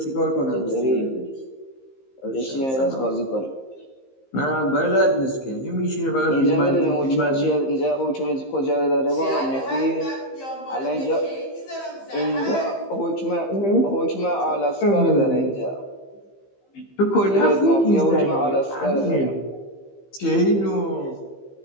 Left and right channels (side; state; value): right; late; 15 ms